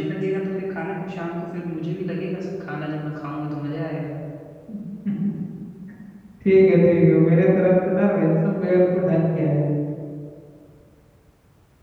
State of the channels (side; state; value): both; identical; correlation 1.00